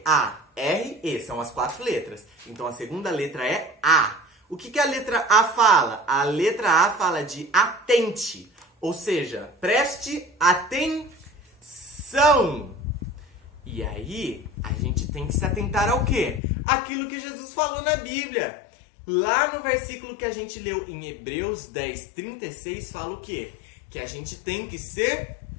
A, R, E, são as 4 letras. Então a segunda letra é A. O que a letra A fala? A letra A fala de atente. Ou seja, preste atenção. E aí, a gente tem que se atentar ao quê? Aquilo que Jesus falou na Bíblia. Lá no versículo que a gente leu em Hebreus 10:36, fala o quê? Que a gente tem que ser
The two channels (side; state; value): right; drops out; at 16.4 s